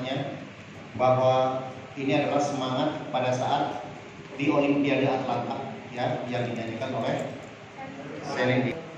bahwa ini adalah semangat pada saat di Olimpiade Atlanta ya, yang dinyanyikan oleh Celine Dion.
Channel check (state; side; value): identical; both; correlation 1.00